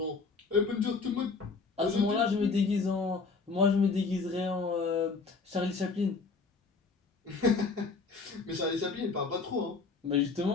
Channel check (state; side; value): quieter; right; 4.4 dB